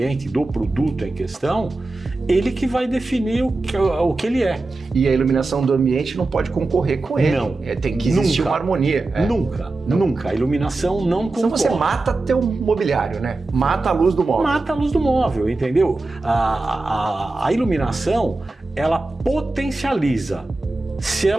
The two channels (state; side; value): quieter; left; 3.2 dB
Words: do produto em questão, ele que vai definir o que ele é. E a iluminação do ambiente não pode concorrer com ele. Não. Tem que existir Nunca. uma harmonia. Nunca. A iluminação não concorre. Então você mata teu mobiliário, né? Mata a luz do móvel. Mata a luz do móvel, entendeu? A iluminação, ela potencializa. Se